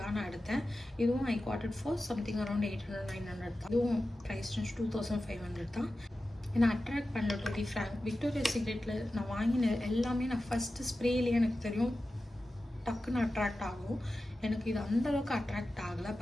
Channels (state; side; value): normal; both; correlation 0.93